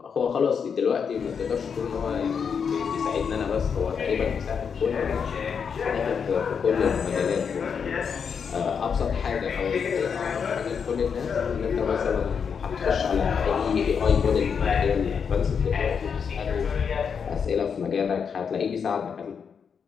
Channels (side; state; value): right; quieter; 6.6 dB